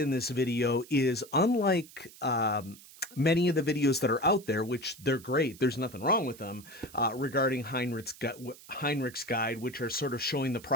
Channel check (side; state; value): right; noise; hiss, 20 dB below the sound